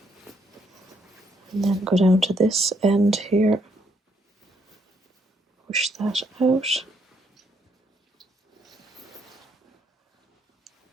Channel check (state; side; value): normal; both; correlation 0.72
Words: and then go down to this end here, push that out.